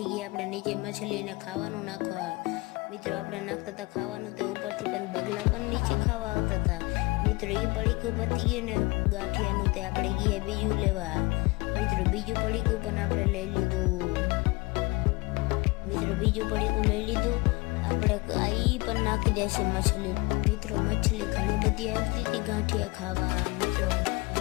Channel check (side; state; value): right; quieter; 24.6 dB